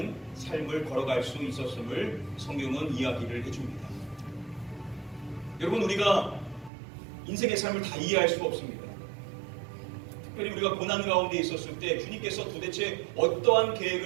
삶을 걸어갈 수 있었음을 성경은 이야기를 해줍니다. 여러분, 우리가 인생의 삶을 다 이해할 수가 없습니다. 특별히 우리가 고난 가운데 있었을 때 주님께서 도대체 어떠한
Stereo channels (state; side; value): drops out; left; at 6.7 s